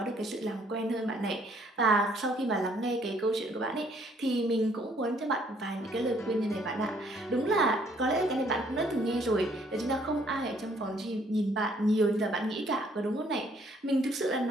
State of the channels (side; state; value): both; normal; correlation 0.64